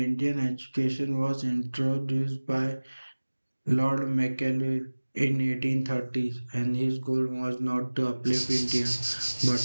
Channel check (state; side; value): inverted; both; correlation -1.00